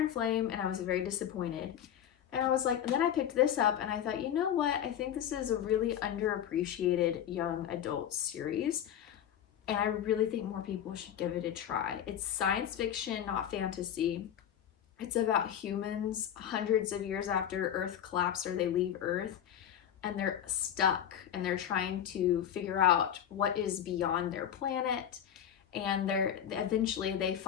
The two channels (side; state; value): right; quieter; 9.8 dB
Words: Flame and I was very disappointed. And I was like, and then I picked this up and I thought, you know what? I think this is a really underappreciated young adult series. And I really think more people should give it a try. It's science fiction, not fantasy. It's about humans hundreds of years after Earth collapsed, or they leave Earth, and they're stuck and they're trying to figure out what is beyond their planet. And eventually they